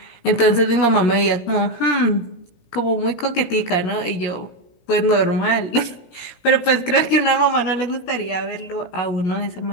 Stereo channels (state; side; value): late; right; 17 ms